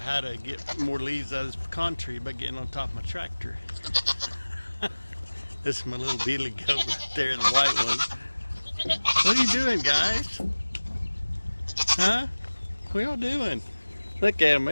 to get more leaves out of this pecan tree by getting on top of my tractor. This is my little beetly goat right there, the white one. What are you doing, guys? Huh? What y'all doing? Look at him.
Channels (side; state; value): both; inverted; correlation -1.00